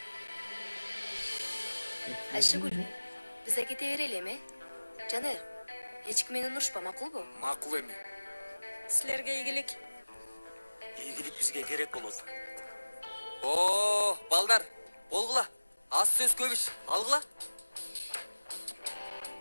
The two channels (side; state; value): both; inverted; correlation -1.00